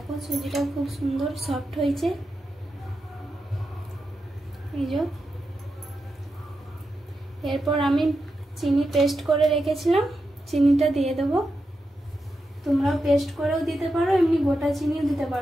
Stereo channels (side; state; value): both; normal; correlation 0.88